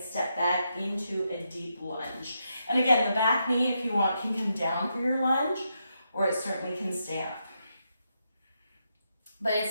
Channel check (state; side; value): inverted; both; correlation -0.82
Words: step back into a deep lunge. And again, the back knee, if you want, can come down for your lunge, or it certainly can stay up. But it's